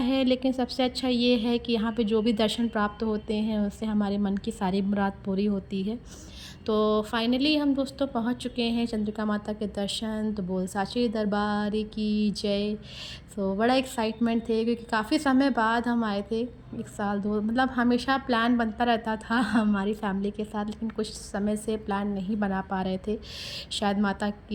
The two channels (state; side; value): identical; both; correlation 1.00